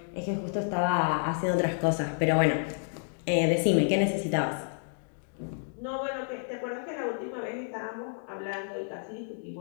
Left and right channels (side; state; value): right; silent; digital silence